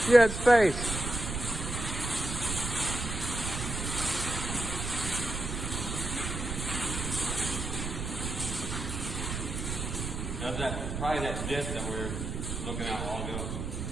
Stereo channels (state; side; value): noise; right; rumble, 4 dB below the sound